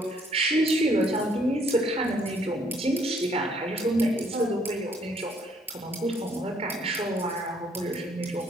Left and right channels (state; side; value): normal; both; correlation 0.66